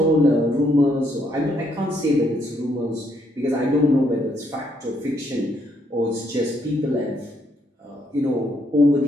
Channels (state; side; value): normal; both; correlation 0.73